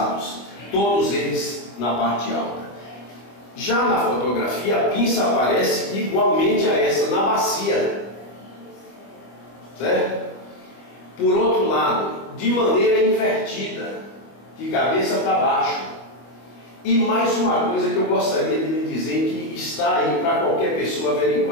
todos eles na parte alta. Já na fotografia, a pinça aparece igualmente a essa, na bacia, certo? Por outro lado, de maneira invertida, de cabeça para baixo. E mais uma coisa que eu gostaria de lhe dizer, que está aí para qualquer pessoa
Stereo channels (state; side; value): late; right; 25 ms